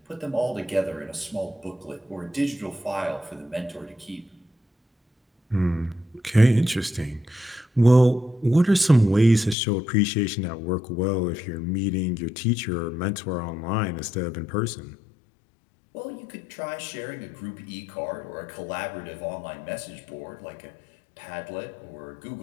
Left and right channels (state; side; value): drops out; right; at 9.6 s